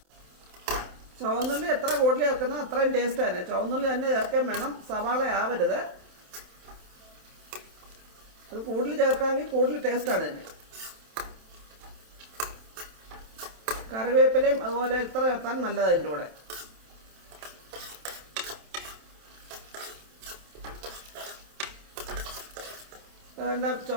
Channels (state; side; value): late; left; 27 ms